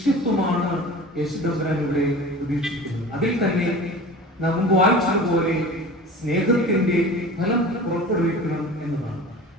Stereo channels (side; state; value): both; normal; correlation 0.38